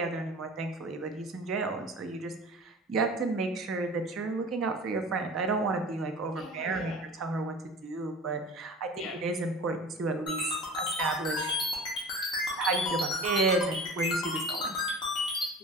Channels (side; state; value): both; normal; correlation 0.38